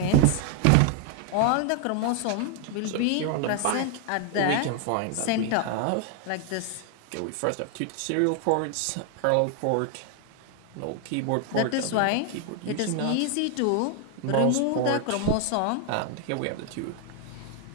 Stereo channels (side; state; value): both; different; correlation 0.00